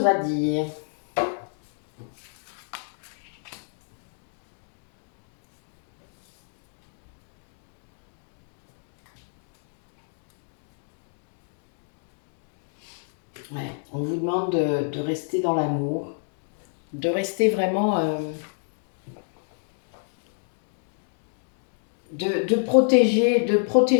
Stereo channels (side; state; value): right; silent; digital silence